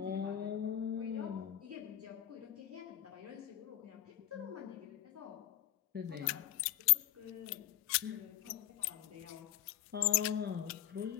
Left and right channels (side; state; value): right; quieter; 12.9 dB